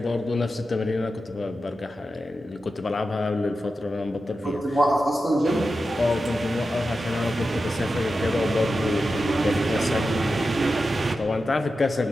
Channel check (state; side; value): normal; both; correlation 0.91